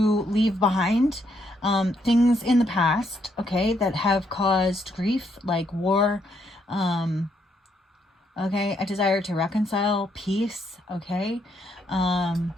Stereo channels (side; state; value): both; normal; correlation 0.74